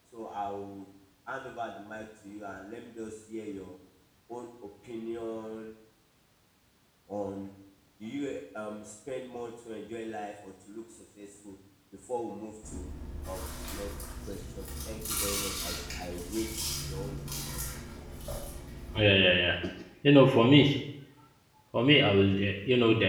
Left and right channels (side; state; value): both; identical; correlation 1.00